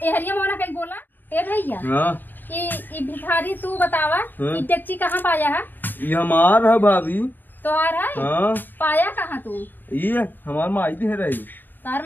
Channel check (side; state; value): right; late; 0.091 ms